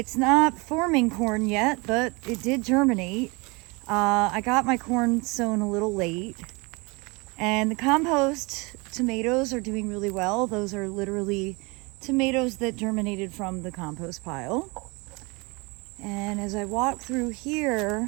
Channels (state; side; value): quieter; left; 27.2 dB